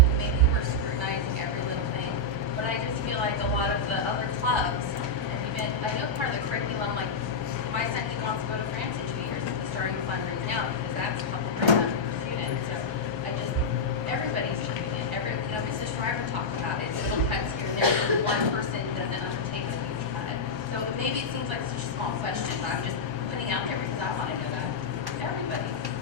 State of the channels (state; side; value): late; left; 1.2 ms